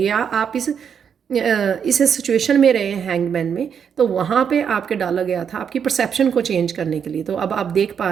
आप इस सिचुएशन में रहे हैं हैंगमैन में, तो वहाँ पे आपके डाला गया था आपकी परसेप्शन को चेंज करने के लिए। तो अब आप देख पा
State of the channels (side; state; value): left; quieter; 7.5 dB